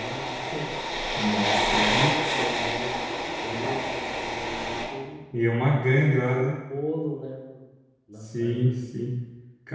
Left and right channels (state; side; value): identical; both; correlation 1.00